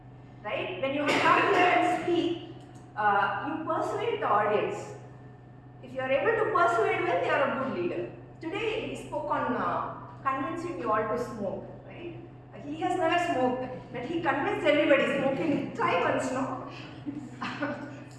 Right? When you come here and speak, you persuade the audience. If you are able to persuade well, you are a good leader. Today, he spoke on convincing you all to smoke. Right? He has never smoked, but he convinced everybody smoking. Try once, no?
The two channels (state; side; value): identical; both; correlation 1.00